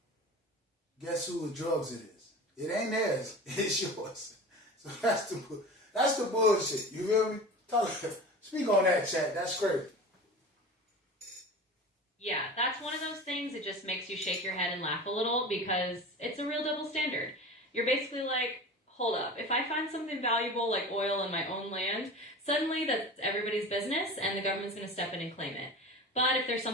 guess who the drugs it is? It ain't theirs. It's yours. So that's the bullshit. You feel me? Speak on that, chat. That's crazy. Yeah, that's one of those things that just makes you shake your head and laugh a little because it's a real double standard. You're basically like, hold up, if I find something valuable like oil in my own land, suddenly that's everybody's business and the government's going to step in and claim it. But if there's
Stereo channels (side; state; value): both; normal; correlation 0.34